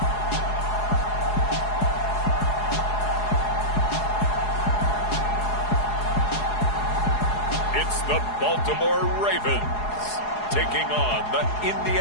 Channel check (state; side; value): late; right; 4.8 ms